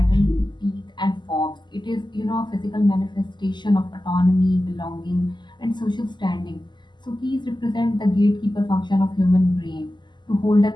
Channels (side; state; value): right; late; 0.21 ms